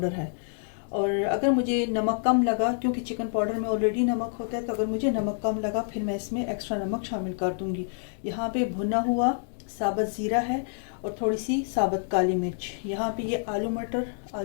है। और अगर मुझे नमक कम लगा, क्योंकि चिकन पाउडर में ऑलरेडी नमक होता है, तो अगर मुझे नमक कम लगा फिर मैं इसमें एक्स्ट्रा नमक शामिल कर दूँगी। यहाँ पे भुना हुआ साबुत ज़ीरा है और थोड़ी सी साबुत काली मिर्च। यहाँ पे ये आलू मटर,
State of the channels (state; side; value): silent; right; digital silence